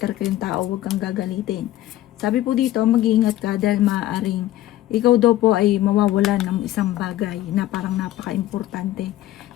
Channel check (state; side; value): quieter; right; 14.4 dB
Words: kayong tao, huwag kang gagalitin. Sabi po dito, mag-iingat ka dahil maaaring ikaw daw po ay mawawalan ng isang bagay na parang napaka-importante.